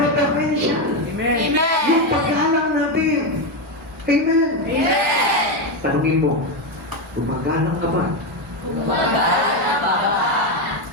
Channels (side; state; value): both; normal; correlation 0.09